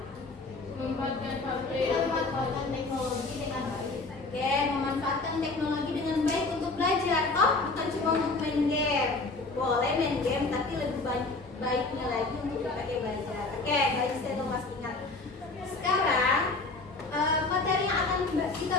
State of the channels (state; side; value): quieter; right; 3.5 dB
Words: Memanfaatkan Teknologi dengan baik. Oke, memanfaatkan teknologi dengan baik untuk belajar. Oh, bukan cuma untuk main game. Boleh main game, tapi lebih baiknya lagi untuk dipakai belajar. Oke, baik saya Mas ingat. Sekarang materi yang akan kita